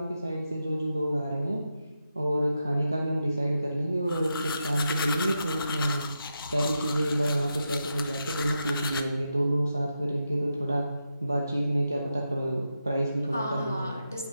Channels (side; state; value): both; inverted; correlation -0.86